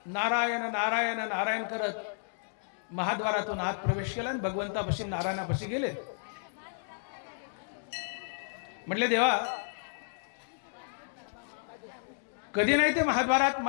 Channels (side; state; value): right; silent; digital silence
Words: नारायण नारायण नारायण करत महाद्वारातून आत प्रवेश केला आणि भगवंतापाशी नारायणापाशी गेले। म्हटले देवा, कधी नाही ते महाद्वारात